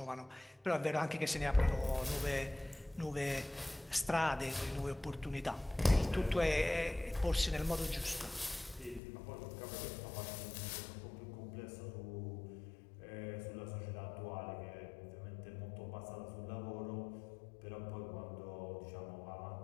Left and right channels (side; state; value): right; drops out; at 9.0 s